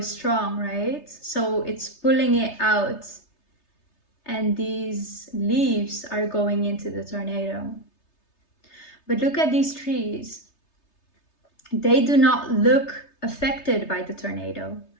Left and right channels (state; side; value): late; right; 3.3 ms